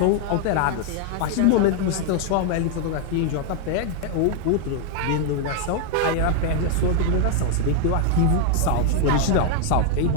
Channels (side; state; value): both; different; correlation 0.00